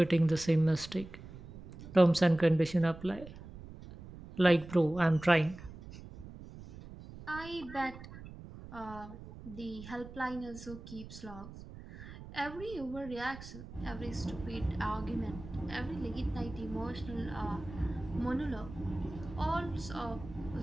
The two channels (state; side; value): noise; right; rumble, 14 dB below the sound